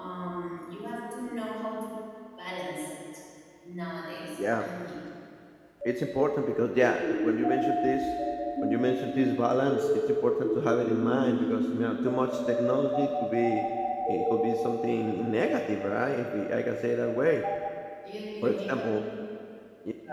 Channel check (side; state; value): both; identical; correlation 1.00